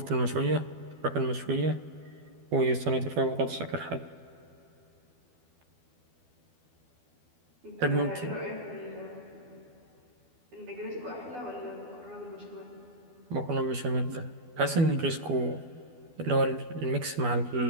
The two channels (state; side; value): late; left; 12 ms